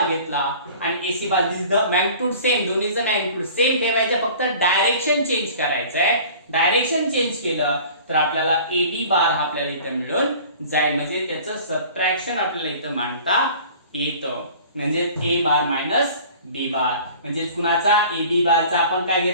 घेतला आणि AC bar this the magnitude same, दोन्हीचं मॅग्निट्यूड सेम ठेवायचं, फक्त डायरेक्शन चेंज करायचं आहे. डायरेक्शन चेंज केलं तर आपल्याला ए बी बार हा आपल्याला इथं मिळून जाईल म्हणजे त्याचं सबट्रॅक्शन आपल्याला इथं मांडता येतं. म्हणजे A bar minus B bar म्हणजे कुणाचा ए बी बारचा आपण काय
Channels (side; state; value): both; inverted; correlation -0.45